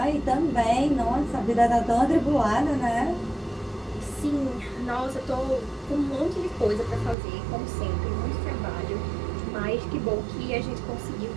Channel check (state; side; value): drops out; left; at 7.2 s